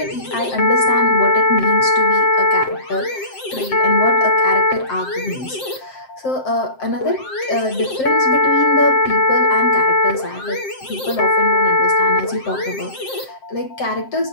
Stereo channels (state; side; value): late; right; 7.6 ms